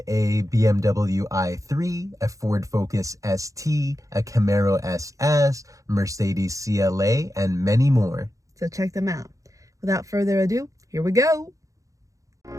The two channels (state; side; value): late; left; 0.16 ms